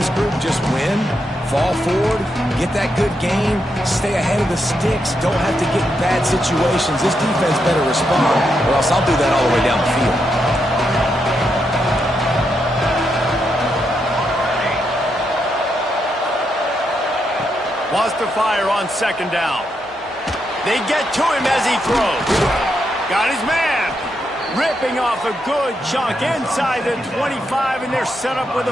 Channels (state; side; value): normal; both; correlation 0.82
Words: group just win, fall forward, get that good game, stay ahead of the sticks, don't have to get in bad situations. This defense better respond, or else I'll do that all the way down the field. Wants to fire on second down. They get to him as he throws. Got his man. Ripping off a good chunk inside the 25, and they're set up with a